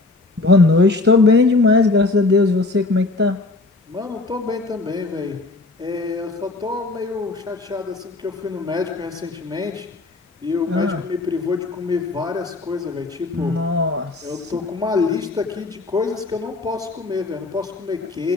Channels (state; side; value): quieter; right; 3.3 dB